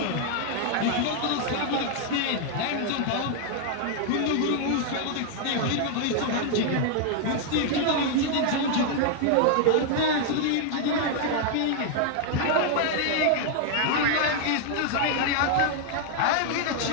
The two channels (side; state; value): both; different; correlation 0.00